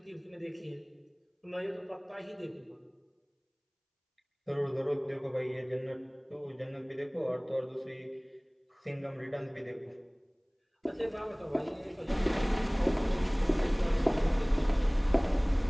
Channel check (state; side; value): identical; both; correlation 1.00